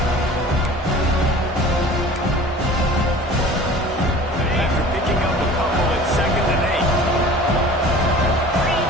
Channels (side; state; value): both; normal; correlation 0.43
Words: After picking up a couple at 2nd and 8.